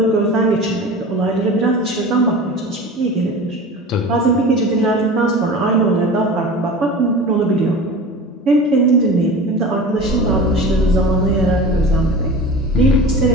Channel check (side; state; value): both; normal; correlation 0.35